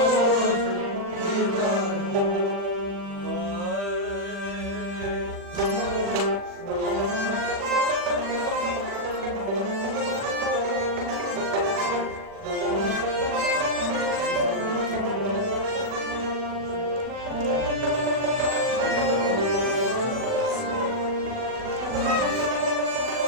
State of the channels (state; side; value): late; left; 40 ms